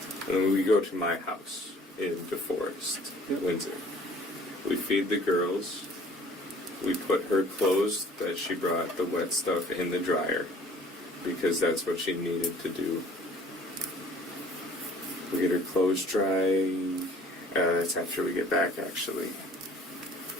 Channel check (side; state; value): both; normal; correlation 0.52